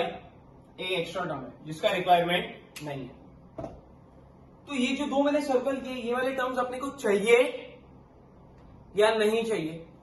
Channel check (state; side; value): identical; both; correlation 1.00